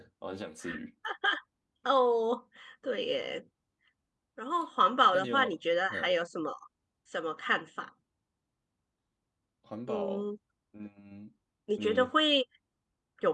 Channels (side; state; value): both; identical; correlation 1.00